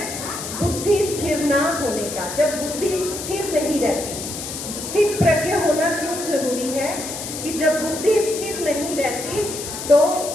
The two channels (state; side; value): noise; left; hiss, 7 dB below the sound